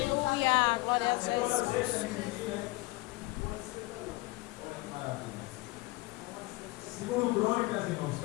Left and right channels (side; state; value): right; quieter; 23.3 dB